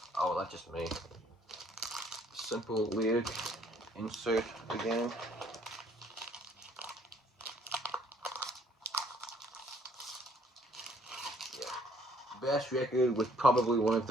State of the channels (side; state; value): both; normal; correlation 0.62